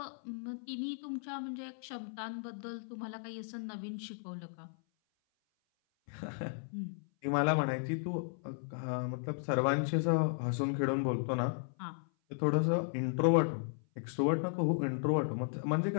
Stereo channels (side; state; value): right; silent; 54 dB below the other